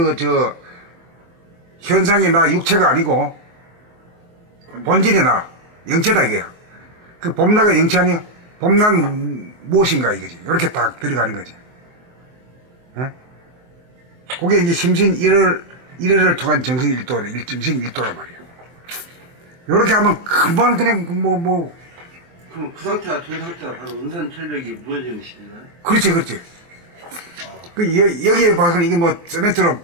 현상이 나 육체가 아니고, 본질이 나, 영체다, 이게요. 그 봄나가 영체 아니야? 봄나는 무엇인가 이거지. 이렇게 딱 들어가는 거지. 그게 이제 심신 1회를 통한 정신 정신 1도란 말이야. 요렇게 하면 금방 그냥 그럼 그 상태가 된 상태가 바로 은산철벽이 무너지는 시기인가요? 그렇지. 여기에 봐서는 이게 세멘트로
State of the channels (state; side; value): late; left; 23 ms